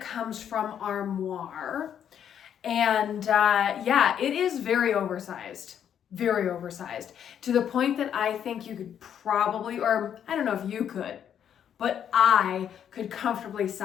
from Armoire. And yeah, it is very oversized to the point that I think you could probably, or I don't know if you could, but I could comfortably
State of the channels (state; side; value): quieter; right; 9.1 dB